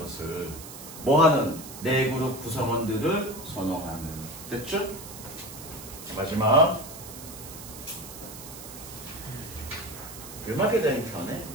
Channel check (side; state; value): right; noise; hiss, 13 dB below the sound